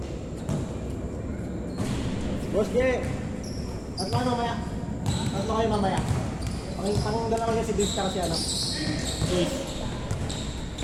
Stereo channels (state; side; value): identical; both; correlation 1.00